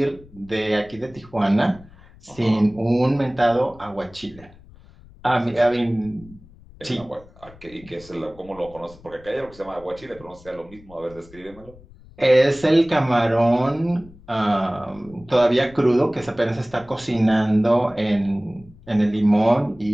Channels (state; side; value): noise; left; rumble, 23 dB below the sound